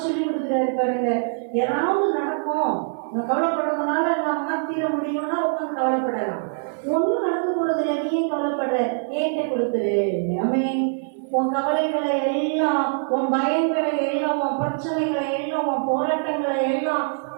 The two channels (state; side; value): silent; left; 63 dB below the other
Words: சொல்லி கொடுக்குறாரு பாருங்க. ஏதாவது நடக்கும், கவலைப்படுறதுனால நான் மாத்திர முடியும்னா உட்காந்து கவலைப்படலாம். ஒண்ணும் நடக்க போறது இல்லை, நீ ஏன் கவலைப்படுற? ஏன்ட்ட கொடுத்துரு. ஆமென். உன் கவலைகளை எல்லாம், உன் பயங்களை எல்லாம், உன் பிரச்சனைகளை எல்லாம், உன் போராட்டங்களை எல்லாம்,